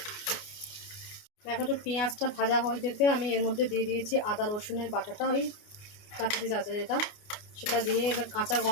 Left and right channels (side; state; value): right; late; 29 ms